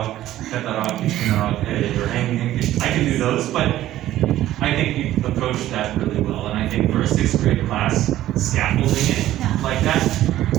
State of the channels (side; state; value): left; quieter; 13.9 dB